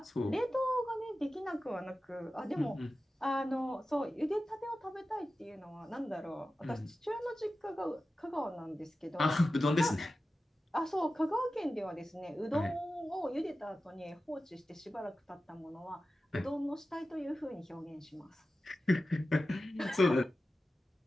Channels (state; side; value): normal; both; correlation 0.94